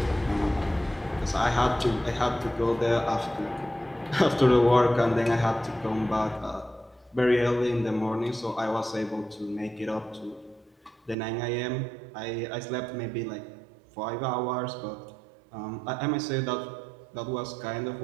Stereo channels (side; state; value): left; drops out; at 11.2 s